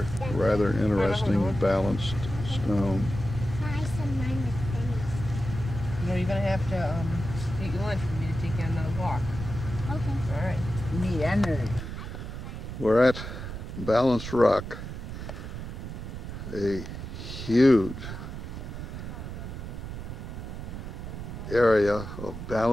rather interesting balanced stone. No, you're going to have to eat your lunch for me to take you on another walk. Okay. All right. Need energy. We're at Balanced Rock, a huge area of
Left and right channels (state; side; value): noise; right; rumble, 8 dB below the sound